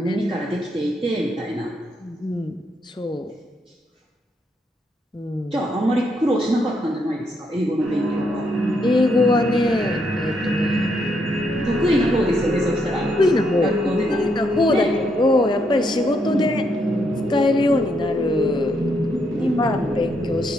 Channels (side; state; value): both; normal; correlation 0.76